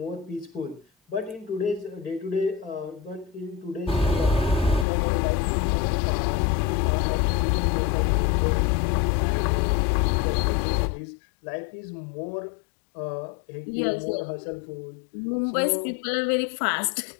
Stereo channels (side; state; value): right; drops out; at 4.9 s